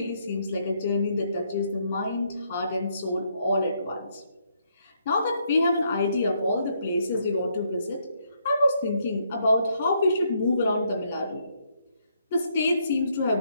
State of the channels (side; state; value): both; inverted; correlation -0.74